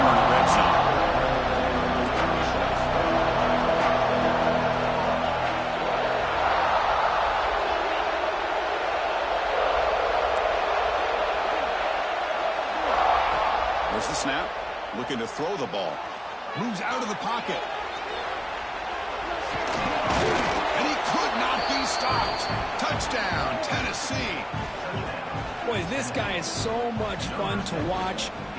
in the red zone. There's the snap. Looking to throw the ball. Moves out of the pocket. And he could not be stopped. Touchdown, Tennessee. Boy, this guy is so much fun to watch.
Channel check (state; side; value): identical; both; correlation 1.00